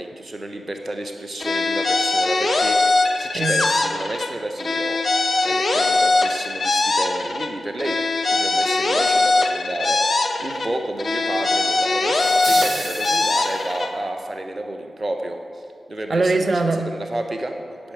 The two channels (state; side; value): normal; both; correlation 0.93